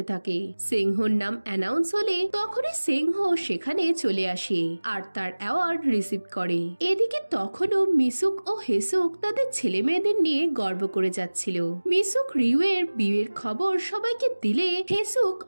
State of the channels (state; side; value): inverted; both; correlation -1.00